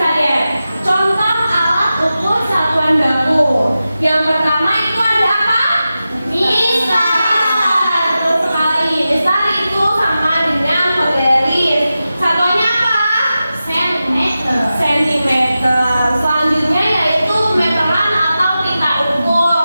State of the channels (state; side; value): inverted; both; correlation -0.93